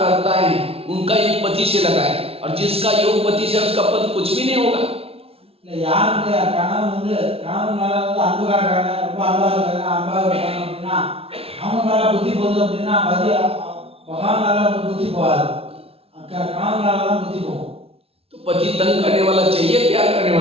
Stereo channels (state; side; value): late; left; 0.28 ms